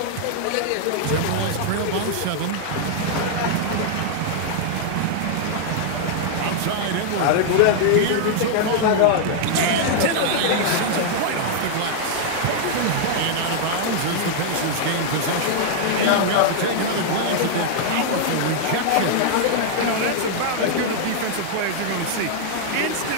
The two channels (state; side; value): different; both; correlation -0.01